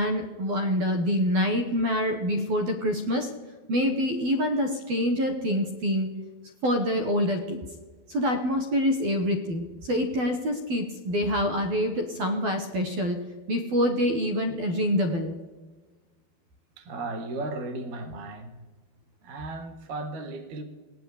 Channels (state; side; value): late; left; 12 ms